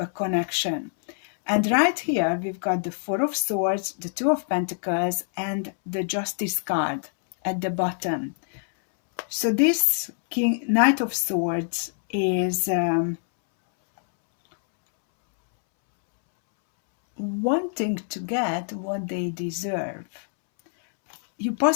connection. And right here, we've got the Four of Swords, the Two of Pentacles, and the Justice card at the bottom. So this Knight of Swords is wanting to get what they deserve. You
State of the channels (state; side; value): silent; right; 62 dB below the other